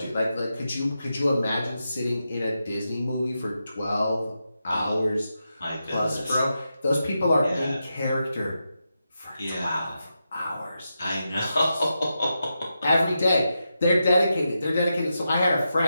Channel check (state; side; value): inverted; both; correlation -0.87